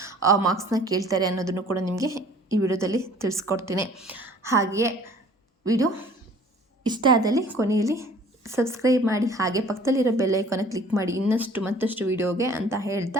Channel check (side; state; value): both; normal; correlation 0.51